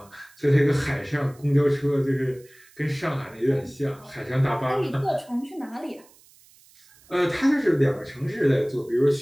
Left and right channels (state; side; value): noise; right; hiss, 28 dB below the sound